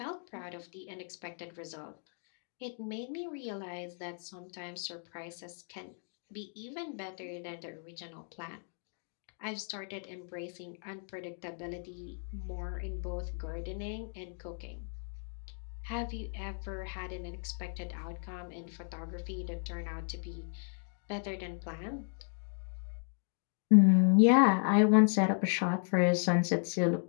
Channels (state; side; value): silent; right; 54 dB below the other